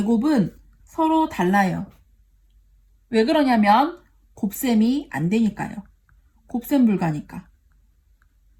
서로 달라요. 왜 그러냐면 곱셈이 안 되니까요. 곱셈 불가니까.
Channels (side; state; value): both; identical; correlation 1.00